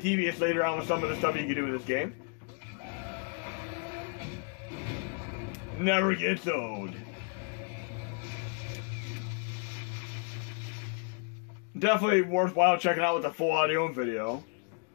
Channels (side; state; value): right; quieter; 39.3 dB